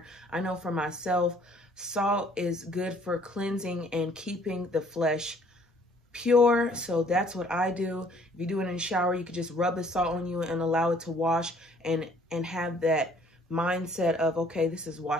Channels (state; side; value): normal; both; correlation 0.59